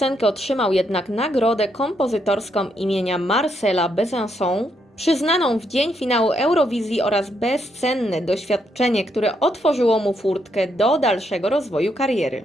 otrzymał jednak nagrodę kompozytorską imienia Marcela Besançon, przyznaną w dzień finału Eurowizji, oraz bezcenne doświadczenie, które otworzyło mu furtkę do dalszego rozwoju kariery.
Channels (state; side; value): normal; both; correlation 0.77